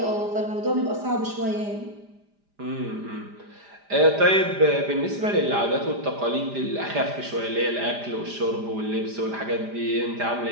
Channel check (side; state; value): left; late; 5.0 ms